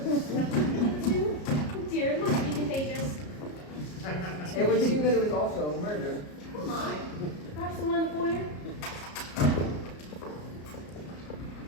Oh dear, it must be contagious. It would seem that it was also murdered. Oh my. Perhaps the one in the foyer?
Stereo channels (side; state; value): right; late; 33 ms